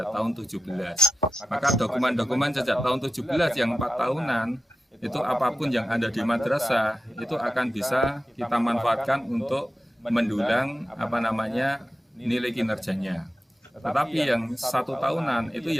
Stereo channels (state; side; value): normal; both; correlation 0.92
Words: tahun 17. Maka dokumen-dokumen sejak tahun 17 yang 4 tahunan, itu apapun yang ada di madrasah, itu akan bisa kita manfaatkan untuk mendulang nilai kinerjanya. Tetapi yang 1 tahunan itu